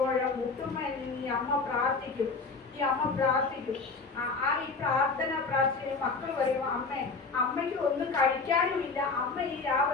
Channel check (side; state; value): right; quieter; 4.3 dB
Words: മുട്ടുമ്മയിൽ നിന്ന് ഈ അമ്മ പ്രാർത്ഥിക്കും. ഈ പ്രാർത്ഥിച്ച് മക്കൾ പറയും, അമ്മയ്ക്ക് ഒന്നും കഴിക്കാനുമില്ല, അമ്മ ഈ